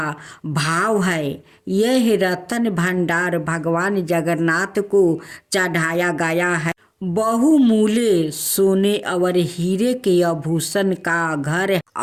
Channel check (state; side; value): identical; both; correlation 1.00